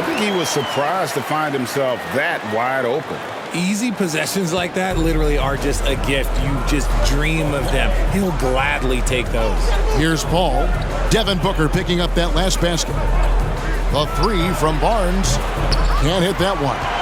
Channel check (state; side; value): identical; both; correlation 1.00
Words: think he was surprised to find himself that wide open. Easy possessions like that literally are just a gift. You just dream of them. He'll gladly take those. Here's Paul. Devin Booker picking up that last basket. The three from Barnes. Can't hit that one.